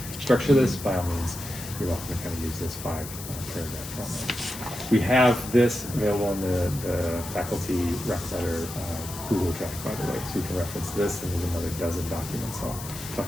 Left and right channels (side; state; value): left; noise; hiss, 11 dB below the sound